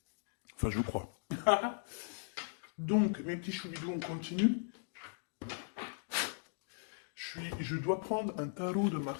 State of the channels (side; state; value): right; silent; digital silence